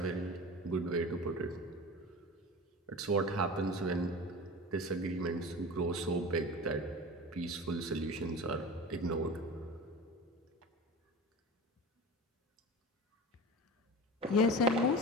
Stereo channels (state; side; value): normal; both; correlation 0.33